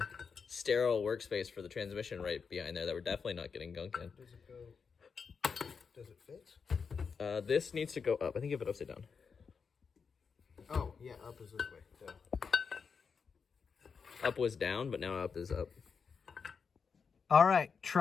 sterile workspace for the transmission right behind there that we're definitely not getting gunk in. does it go? Does it fit? This needs to go up. I think you have it upside down. Oh yeah, up is this way. Duh. Up was down, but now up is up. All right,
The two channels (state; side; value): quieter; right; 5.7 dB